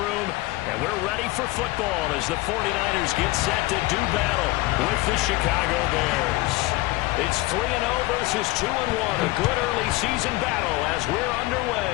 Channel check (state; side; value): quieter; right; 19.9 dB